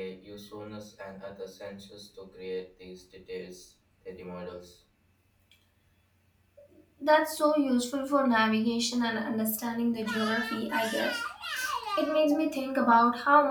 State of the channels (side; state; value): both; identical; correlation 1.00